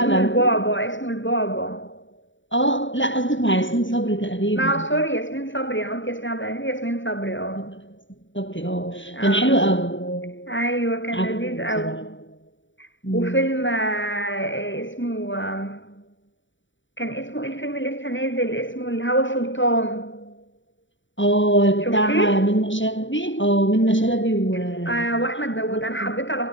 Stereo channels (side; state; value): right; late; 0.55 ms